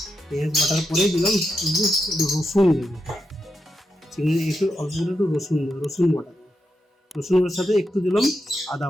পেঁয়াজ বাটার পরে দিলাম একটু রসুন দেবো। চিংড়ি একটু অল্প করে একটু রসুন বাটা দেবো। রসুনের সাথে একটু দিলাম আদা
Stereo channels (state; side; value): normal; both; correlation 0.86